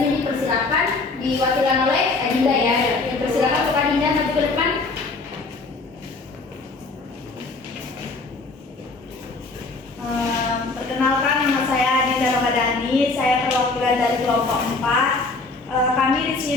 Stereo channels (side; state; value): right; quieter; 3.6 dB